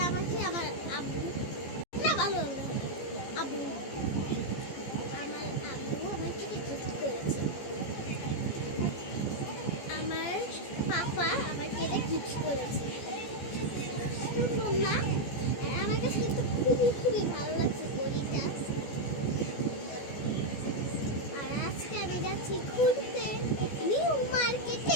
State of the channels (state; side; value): late; right; 14 ms